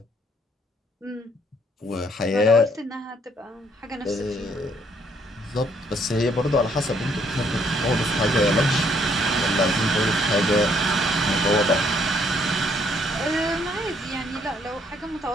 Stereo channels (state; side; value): normal; both; correlation 0.67